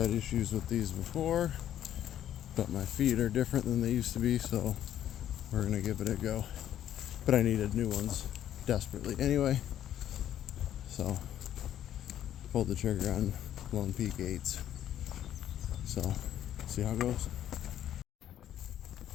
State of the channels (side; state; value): right; quieter; 11.2 dB